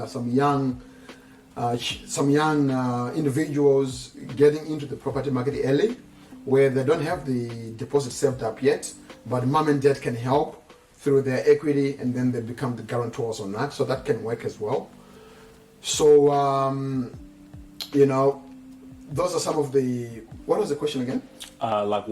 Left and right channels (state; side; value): identical; both; correlation 1.00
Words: some young individuals getting into the property market early, where they don't have the deposit saved up yet, but mom and dad can help through their equity, and then they become the guarantors on that. So that can work as well. So those are some of the. What was the question again? Like